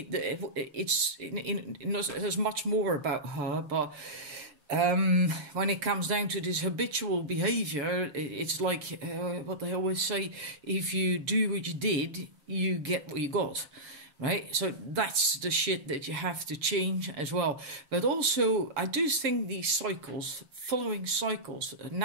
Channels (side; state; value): left; late; 6.8 ms